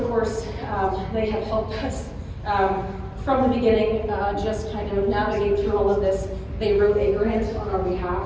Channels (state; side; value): identical; both; correlation 1.00